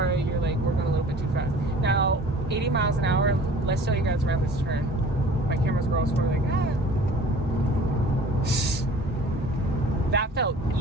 you're like, we're going a little bit too fast. Now, 80 miles an hour, let's show you guys around this turn. My camera's girls were like, ah. That felt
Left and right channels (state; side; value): normal; both; correlation 0.47